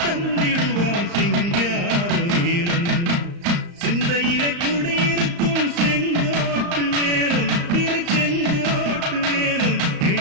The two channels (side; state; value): left; late; 35 ms